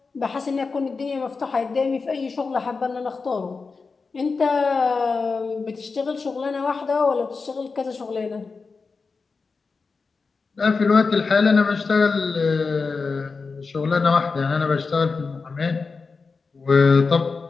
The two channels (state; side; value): quieter; right; 4.5 dB